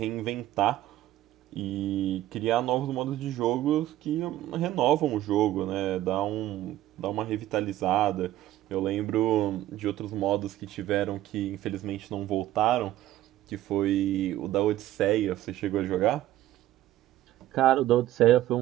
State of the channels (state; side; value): quieter; left; 14.2 dB